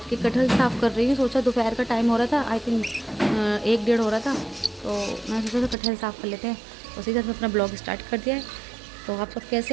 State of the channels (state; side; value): drops out; left; at 5.8 s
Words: के कटहल साफ़ कर रही हूं। सोचा दोपहर का टाइम हो रहा था, आई थिंक 1-1:30 हो रहा था, तो मैं सोचा कटहल साफ़ कर लेते हैं। उसी तरह अपना ब्लॉग स्टार्ट कर दिया है। तो आप सब